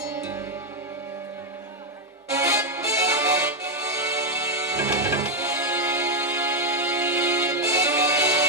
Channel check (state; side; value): normal; both; correlation 0.02